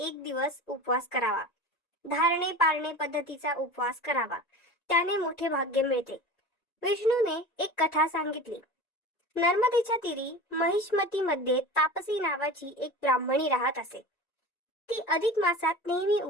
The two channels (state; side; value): late; right; 1.9 ms